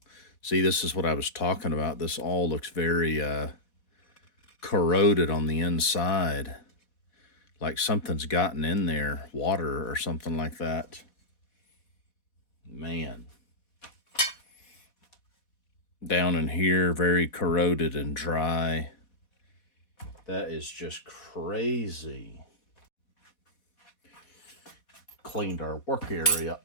See, this is what I was talking about. This all looks very corroded on the inside. Like something's gotten in there, water or something like that. Man. Down in here, very corroded and dry. That is just crazy. Cleaned our work area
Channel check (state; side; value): late; right; 4.1 ms